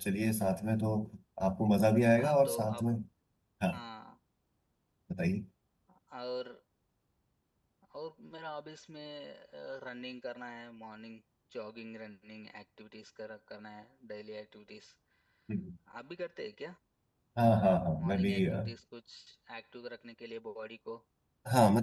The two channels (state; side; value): identical; both; correlation 1.00